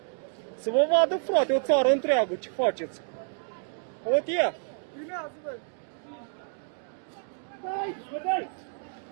Să vă vadă, frate, o țară întreagă, ce faceți? Uite ea. Filmează, bă! Dai, bă, dai!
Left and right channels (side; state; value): left; silent; 59 dB below the other